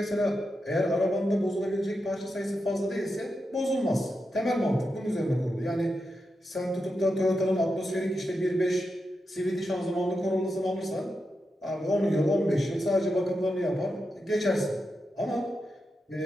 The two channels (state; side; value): normal; both; correlation 0.87